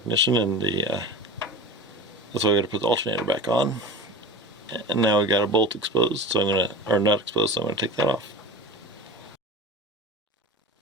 and that's why we got to put the alternator back on. And now we got a bolt exposed, so not exposed, so I'm gonna take that off.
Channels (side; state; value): both; normal; correlation 0.33